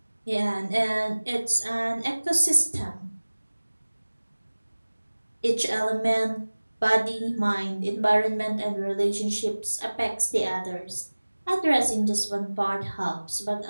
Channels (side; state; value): both; inverted; correlation -1.00